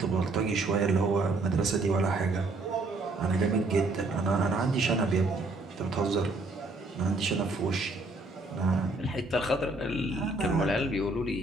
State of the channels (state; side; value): quieter; left; 3.1 dB